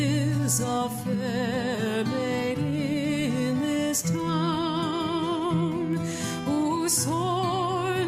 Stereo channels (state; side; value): identical; both; correlation 1.00